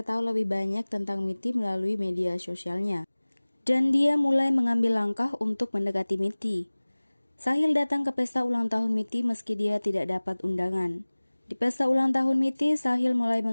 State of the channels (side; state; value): both; inverted; correlation -1.00